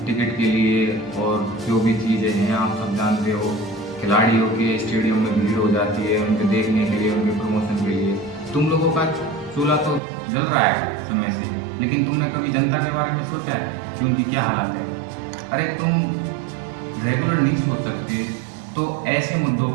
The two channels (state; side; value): drops out; left; at 10.0 s